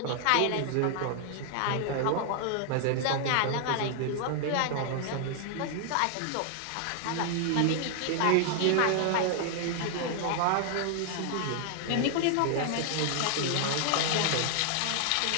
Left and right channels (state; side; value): different; both; correlation 0.00